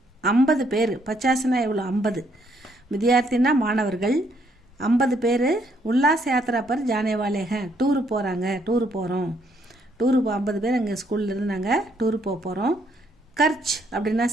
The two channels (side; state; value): both; normal; correlation 0.70